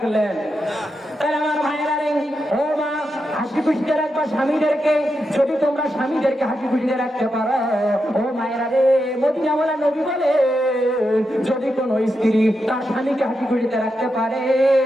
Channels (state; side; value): normal; both; correlation 0.86